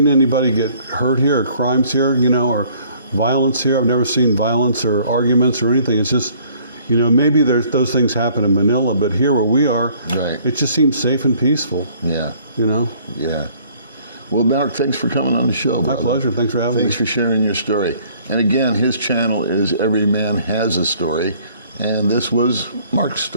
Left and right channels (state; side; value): inverted; both; correlation -0.59